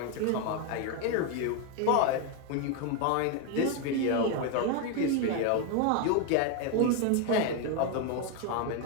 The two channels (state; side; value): different; both; correlation 0.01